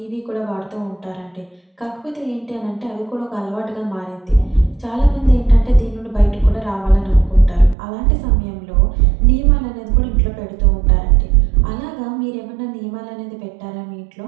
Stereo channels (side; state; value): left; drops out; at 7.8 s